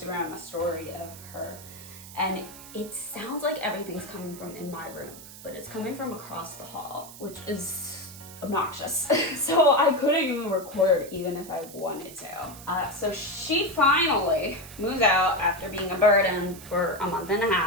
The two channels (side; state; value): right; noise; hiss, 16 dB below the sound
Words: a story of her, and it sounds like everything's coming from in my room, but it's coming from across the hall, which is obnoxious. So I couldn't even record even if I wanted to. So she finally moves out after being a burden for a month and a